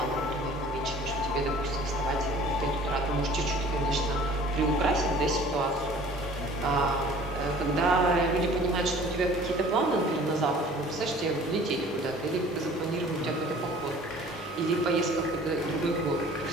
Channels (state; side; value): normal; both; correlation 0.48